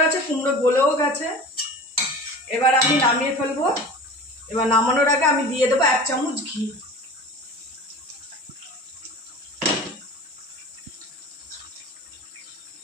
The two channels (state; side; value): normal; both; correlation 0.37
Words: গেছে, কুমড়ো গলেও গেছে। এবার আমি নামিয়ে ফেলবো। এবার নামানোর আগে আমি দিয়ে দেবো 1 চামচ ঘি।